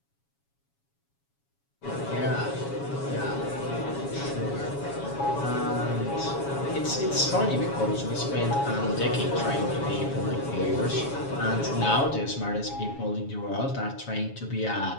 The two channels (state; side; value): late; right; 7.2 ms